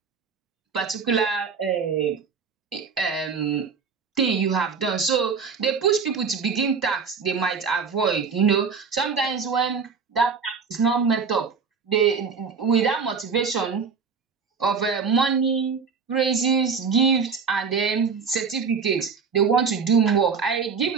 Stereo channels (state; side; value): quieter; left; 5.6 dB